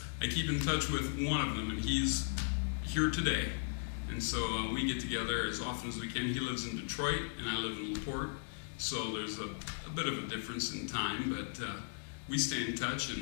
I keep in touch with one of them, and he's here today. And so we get together as often as we can. He lives in Detroit, and I live in LaPorte. So there's a bit of a difference in time, but we stay in touch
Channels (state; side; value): silent; right; digital silence